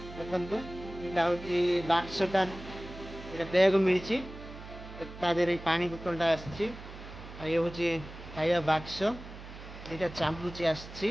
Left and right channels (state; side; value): noise; right; hum, 14 dB below the sound